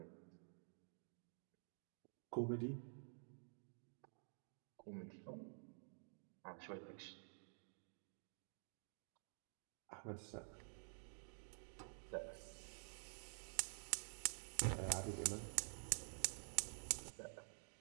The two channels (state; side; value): silent; left; digital silence